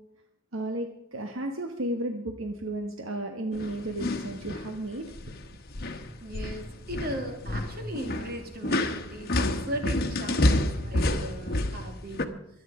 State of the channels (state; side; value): normal; both; correlation 0.57